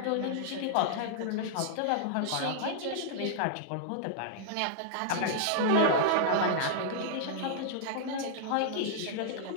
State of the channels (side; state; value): both; different; correlation -0.01